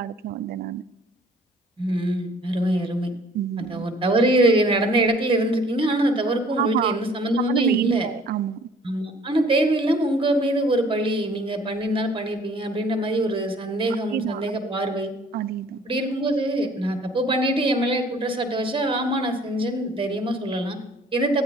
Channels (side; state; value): both; normal; correlation 0.55